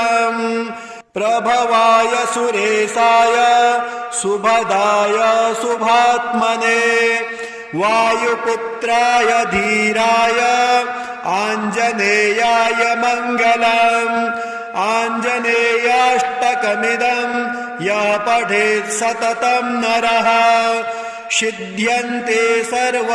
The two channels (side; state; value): both; identical; correlation 1.00